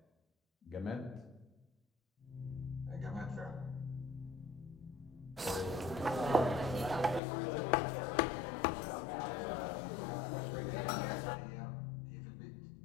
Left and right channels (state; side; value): drops out; right; at 7.2 s